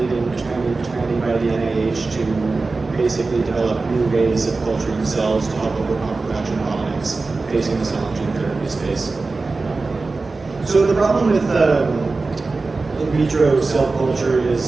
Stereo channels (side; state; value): left; quieter; 3.8 dB